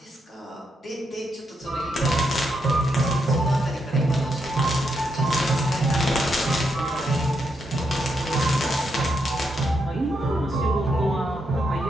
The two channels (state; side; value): normal; both; correlation 0.80